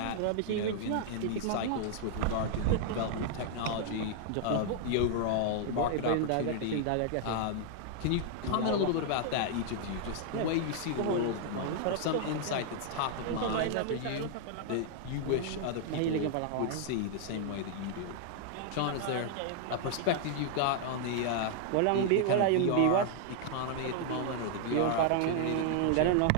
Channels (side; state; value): both; different; correlation -0.01